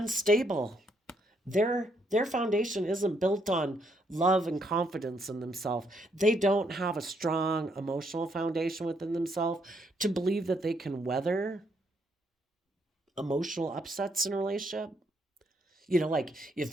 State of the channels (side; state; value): both; normal; correlation 0.73